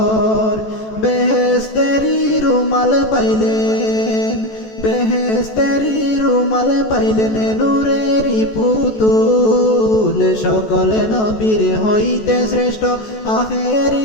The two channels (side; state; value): right; late; 14 ms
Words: বেহেশতেরি রুমাল পাইলেন বেহেশতেরি রুমাল পাইলেন নূরেরি পুতুল সকল নবীর হইতে শ্রেষ্ঠ